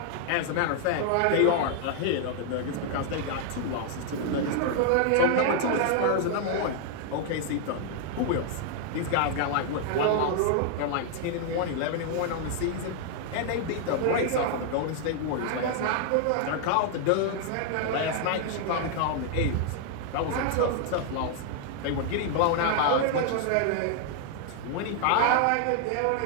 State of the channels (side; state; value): both; different; correlation 0.00